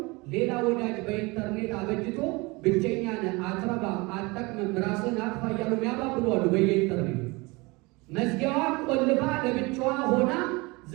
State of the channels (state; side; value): quieter; left; 25.0 dB